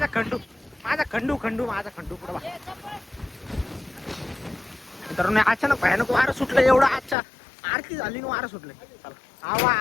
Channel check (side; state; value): right; drops out; at 7.2 s